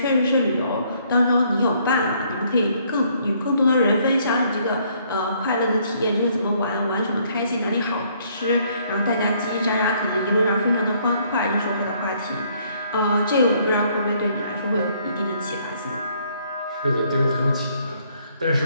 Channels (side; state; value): both; inverted; correlation -0.66